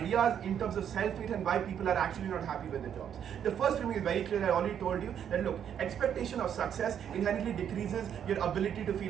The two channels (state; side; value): quieter; left; 9.0 dB